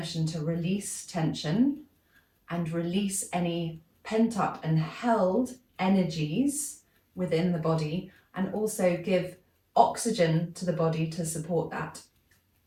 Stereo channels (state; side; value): identical; both; correlation 1.00